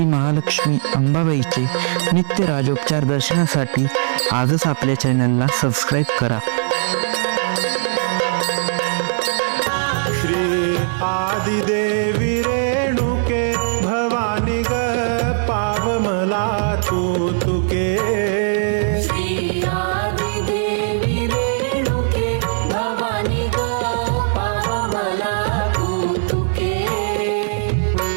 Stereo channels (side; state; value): left; silent; digital silence